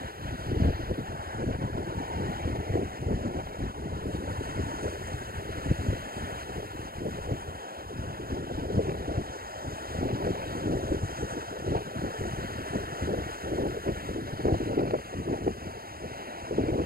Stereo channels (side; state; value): left; late; 0.44 ms